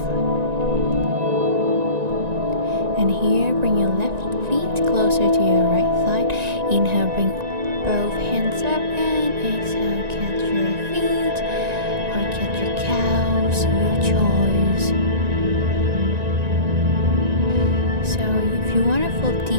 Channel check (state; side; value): late; left; 1.9 ms